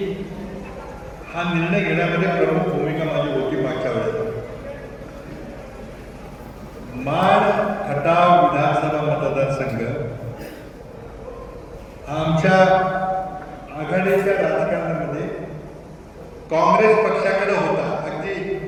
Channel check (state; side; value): identical; both; correlation 1.00